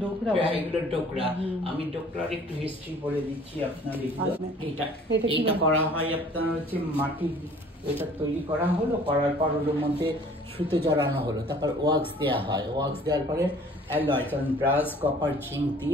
ডোকরা, এগুলো ডোকরা। আমি ডোকরার একটু হিস্ট্রি বলে দিচ্ছি আপনার। এটা করা হয় আপনার হচ্ছে মাটি, এটা তৈরি করা হলো, করার পর ওর মধ্যে সুতো জড়ানো হলো, তারপর ওয়াক্স দেওয়া হয়। ওয়াক্স দেওয়ার পরে অ্যালয়, কারণ ব্রাশ, কপার, জিঙ্ক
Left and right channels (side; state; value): both; normal; correlation 0.52